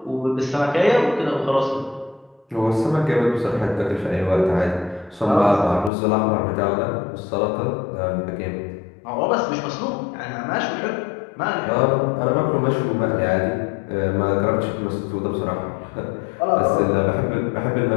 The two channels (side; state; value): right; drops out; at 5.9 s